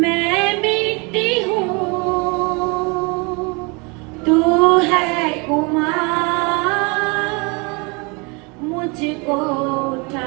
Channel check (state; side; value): quieter; left; 29.8 dB